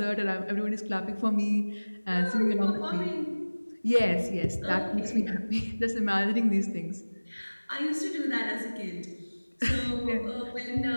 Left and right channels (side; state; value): both; inverted; correlation -1.00